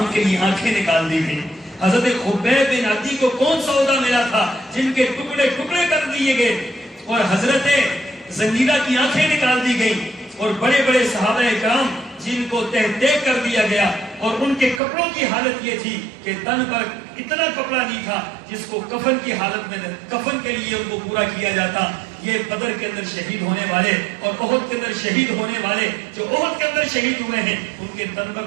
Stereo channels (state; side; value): drops out; left; at 14.8 s